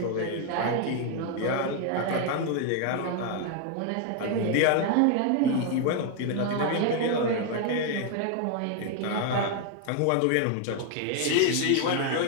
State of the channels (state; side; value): different; both; correlation 0.00